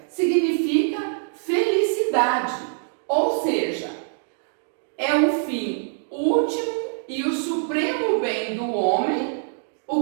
significa felicidade, ou seja, é o fim último e o supremo bem do homem,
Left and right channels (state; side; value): silent; left; digital silence